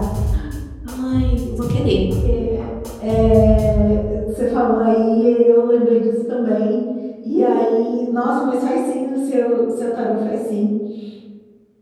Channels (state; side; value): identical; both; correlation 1.00